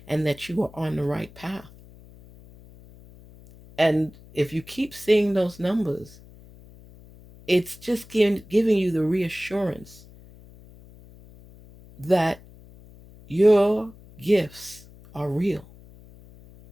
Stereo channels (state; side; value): noise; left; hum, 22 dB below the sound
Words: and that you are on the right path. And if you keep seeing those numbers, it's just giving you the reassurance that your gifts are real.